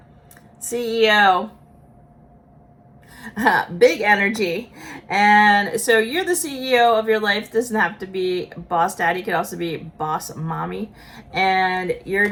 CEO, big energy. And so you're the CEO of your life. It doesn't have to be boss daddy. It could also be boss mommy. And you're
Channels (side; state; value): both; identical; correlation 1.00